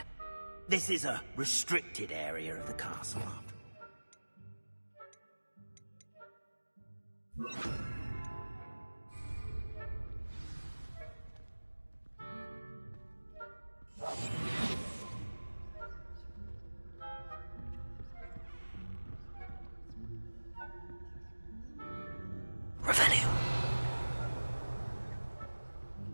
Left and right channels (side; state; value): both; inverted; correlation -1.00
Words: This is a restricted area of the castle, after all. Revelio.